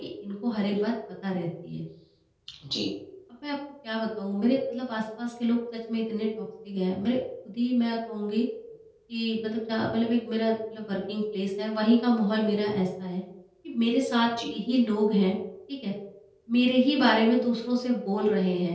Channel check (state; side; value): identical; both; correlation 1.00